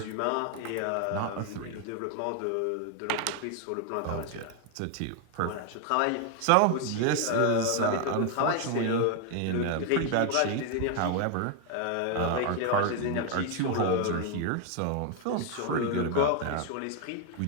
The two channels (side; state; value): both; different; correlation 0.00